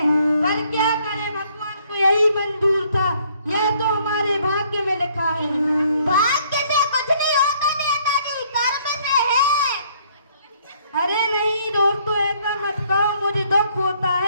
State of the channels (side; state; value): both; inverted; correlation -0.64